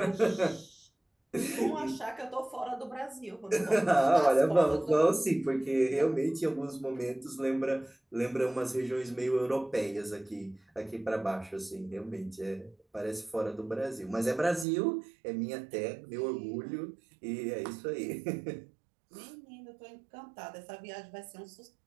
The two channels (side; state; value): left; drops out; at 14.7 s